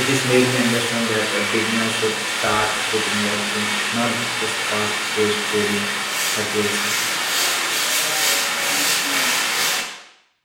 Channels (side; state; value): both; identical; correlation 1.00